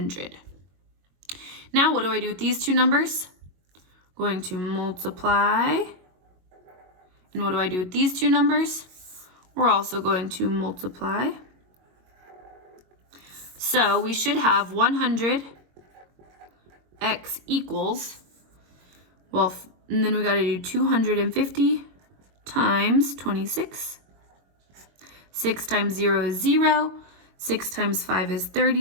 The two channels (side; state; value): left; late; 22 ms